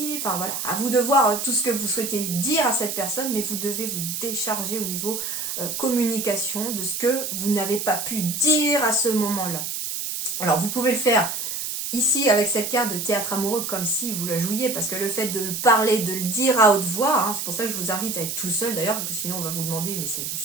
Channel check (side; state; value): right; noise; hiss, 4 dB below the sound